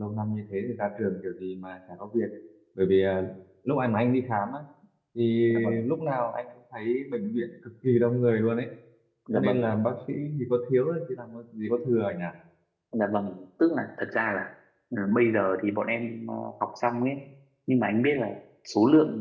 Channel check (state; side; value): identical; both; correlation 1.00